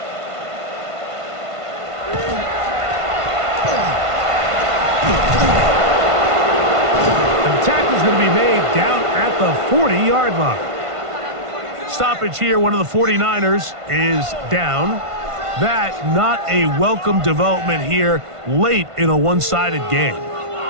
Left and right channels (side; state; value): left; late; 1.5 ms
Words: Tackle's going to be made down at the 40-yard line. Stoppage here. One of the 49ers is down. That not a welcome development here late in a one-sided game.